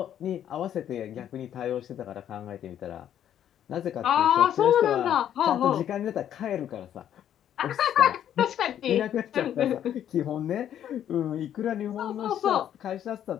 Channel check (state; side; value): quieter; right; 10.3 dB